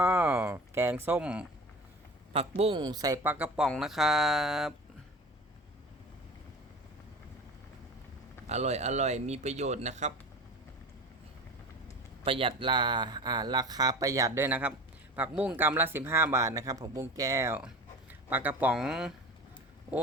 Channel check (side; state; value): both; normal; correlation 0.34